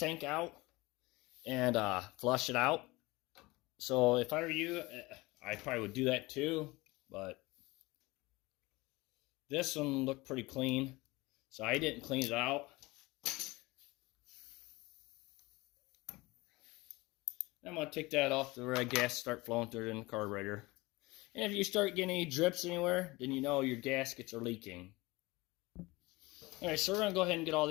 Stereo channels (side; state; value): right; quieter; 22.2 dB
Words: out and flush it out. So if I were you, I probably would do that too, but this one looked pretty clean, so I didn't clean it out. I'm going to take that off the red gas, start flowing through it in the carburetor. And if you start getting any drips anywhere, then you know your gaskets are leaking. Alright, so we're going to go ahead and get all